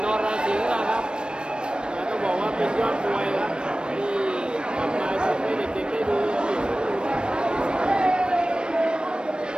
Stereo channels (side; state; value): left; late; 0.053 ms